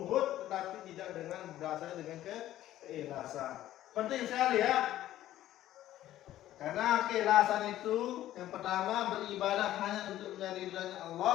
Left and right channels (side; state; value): right; quieter; 13.5 dB